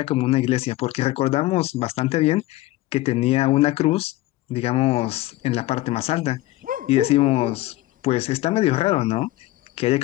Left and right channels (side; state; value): right; quieter; 17.5 dB